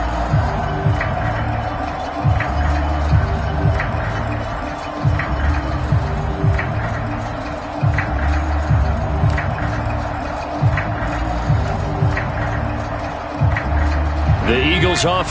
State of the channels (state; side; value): identical; both; correlation 1.00